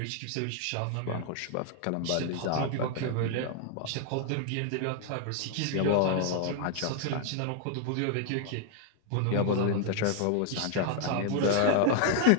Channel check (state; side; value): different; both; correlation 0.00